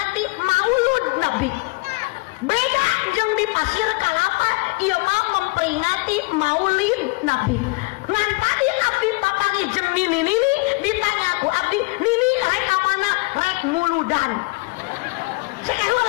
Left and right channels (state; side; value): quieter; right; 26.3 dB